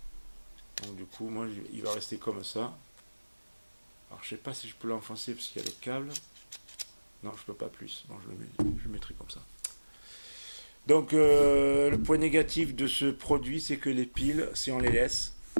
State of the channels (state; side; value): inverted; both; correlation -1.00